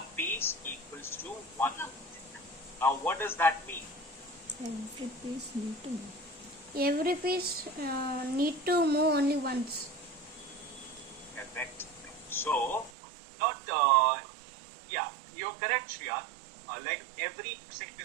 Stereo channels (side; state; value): left; drops out; at 12.9 s